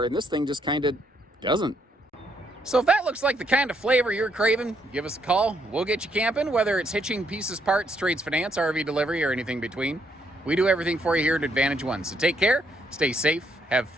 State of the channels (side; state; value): both; normal; correlation 0.73